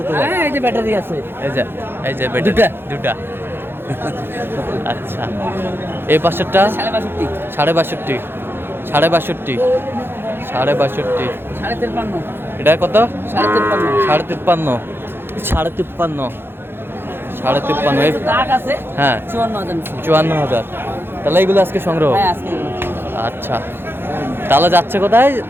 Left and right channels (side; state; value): left; late; 0.10 ms